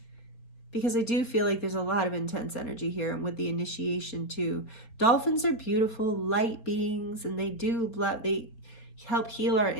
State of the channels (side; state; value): right; late; 4.2 ms